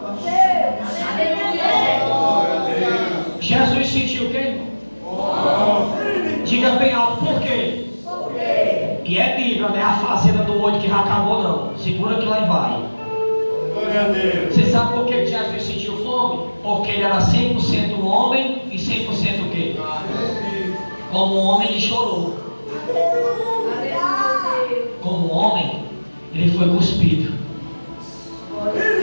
Jesus sentiu o quê? Fome. Diga bem alto, por quê? E é Bíblia, não é a fazenda do olho que já acabou, não. Segura que lá e vai. Você sabe por que Jesus sentiu fome? Porque ele era 100% homem e 100% o quê? Como homem ele chorou. Como homem ele foi cuspido.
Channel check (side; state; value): both; inverted; correlation -1.00